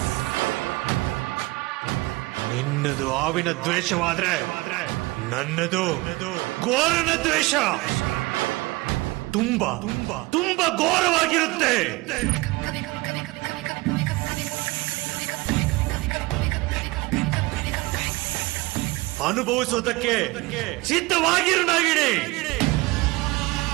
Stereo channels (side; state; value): left; quieter; 22.7 dB